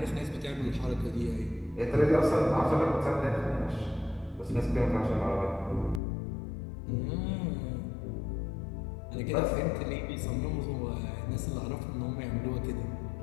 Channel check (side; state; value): right; drops out; at 6.0 s